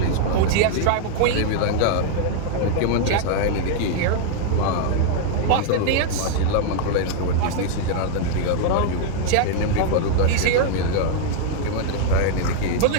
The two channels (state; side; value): different; both; correlation 0.00